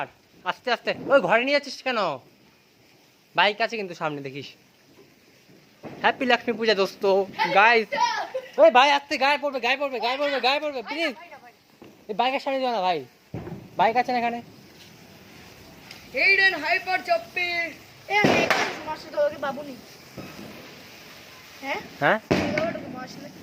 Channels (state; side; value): identical; both; correlation 1.00